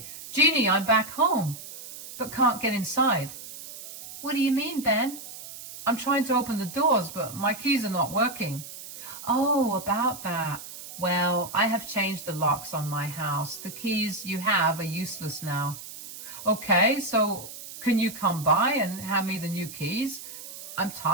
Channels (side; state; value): right; noise; hiss, 13 dB below the sound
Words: Jeannie, I'm back home, but can't get inside." "What do you mean, Ben?" "I'm trying to open the doors, but my keys are not working." "Oh, about that. Well, I have changed the locks on my house. The keys you have are useless now." "Okay, so can you come by and hand me the new keys? I'm